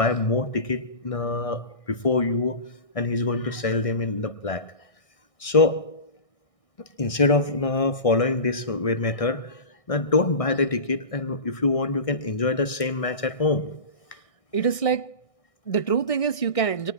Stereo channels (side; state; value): right; late; 1.6 ms